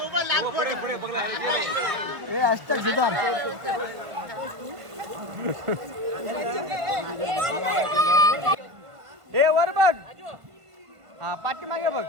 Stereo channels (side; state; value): left; late; 1.5 ms